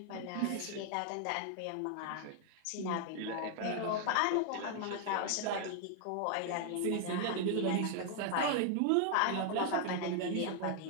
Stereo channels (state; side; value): different; both; correlation 0.00